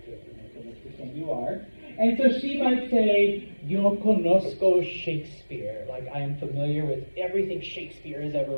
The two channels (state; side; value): inverted; both; correlation -1.00